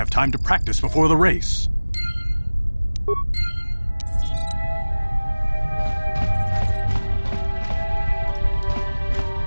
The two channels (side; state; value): both; inverted; correlation -1.00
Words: time to practice before the race.